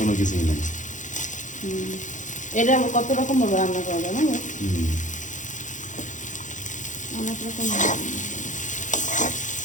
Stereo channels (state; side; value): late; right; 0.36 ms